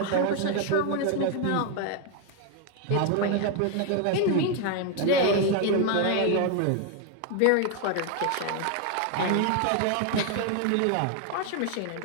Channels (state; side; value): different; both; correlation 0.01